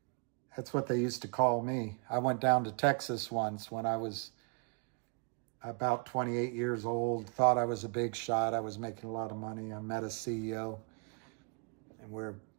That's what they used to call me. I went down to Texas once when I was about 28 years old, thought I was a big shot. I was making a lot of money. I met a CEO, and we're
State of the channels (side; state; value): left; quieter; 38.4 dB